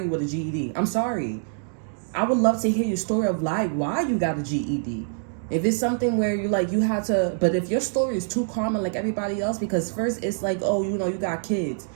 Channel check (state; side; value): silent; left; digital silence